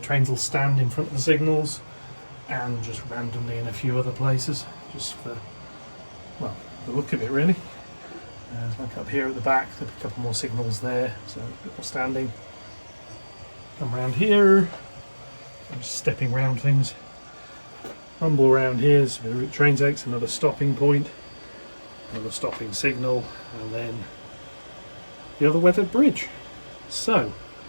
will stand in front of the signals, and just randomly in a few other places, just for, well, the look of it really. Like up here at the back, there'll be a couple more signals there, so a bit more standing. Come around here, I'm just stepping around things. Rumble around here, so the route train takes another stopping point, another stopping signal, and then the other weathered bridge. So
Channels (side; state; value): both; inverted; correlation -1.00